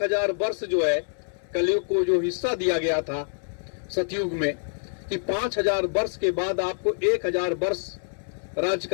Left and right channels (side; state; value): right; silent; 60 dB below the other